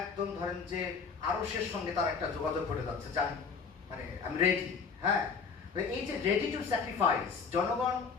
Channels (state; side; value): quieter; right; 5.5 dB